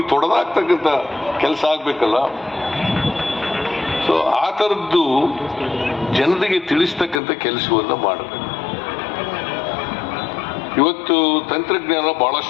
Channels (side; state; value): right; drops out; at 7.2 s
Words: ತೊಡೆದಾಕ್ತಕ್ಕಂಥ ಕೆಲಸ ಆಗ್ಬೇಕಲ್ಲ. ಸೊ ಆ ಥರದ್ದು ಜನರಿಗೆ ತಿಳಿಸ್ತಕ್ಕಂಥ ಕೆಲಸವನ್ನ ಮಾಡಬೇಕು. ಇವತ್ತು ತಂತ್ರಜ್ಞಾನ